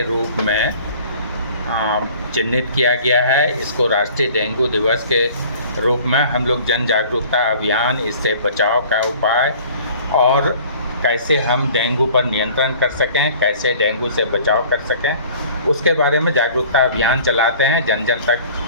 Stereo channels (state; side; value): inverted; both; correlation -0.49